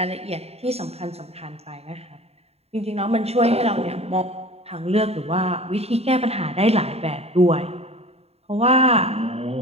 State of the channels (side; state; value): left; late; 0.30 ms